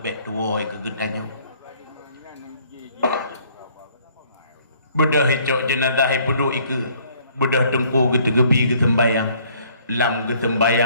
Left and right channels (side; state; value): both; inverted; correlation -0.61